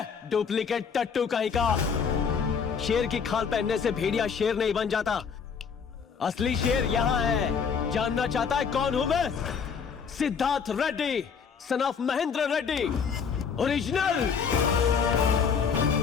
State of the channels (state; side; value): quieter; right; 6.3 dB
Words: डुप्लीकेट टट्टू कहीं का। शेर की खाल पहनने से भेड़िया शेर नहीं बन जाता। असली शेर यहाँ है। जानना चाहता है कौन हूं मैं? Siddharth Reddy, son of Mahendra Reddy, original.